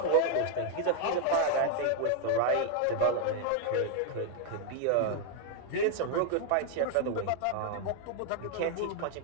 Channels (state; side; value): different; both; correlation 0.01